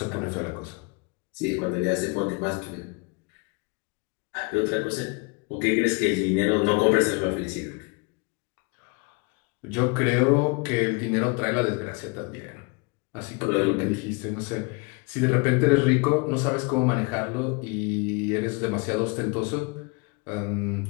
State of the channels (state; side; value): quieter; right; 29.7 dB